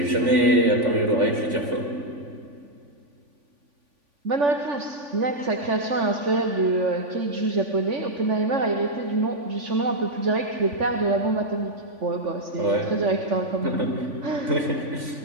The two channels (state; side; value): late; left; 3.5 ms